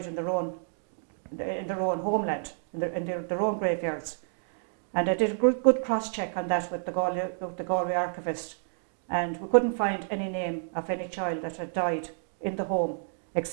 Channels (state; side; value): silent; left; digital silence